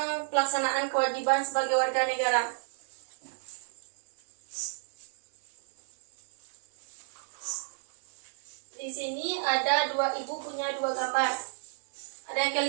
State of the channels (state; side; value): silent; left; digital silence